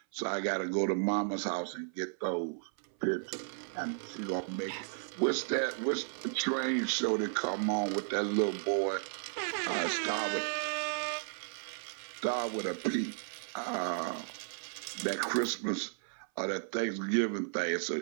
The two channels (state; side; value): silent; left; 55 dB below the other